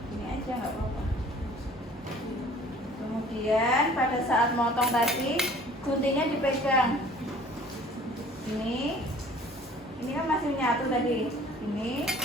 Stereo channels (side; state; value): both; normal; correlation 0.50